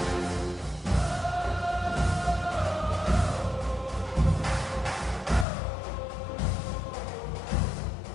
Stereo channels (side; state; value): right; drops out; at 5.5 s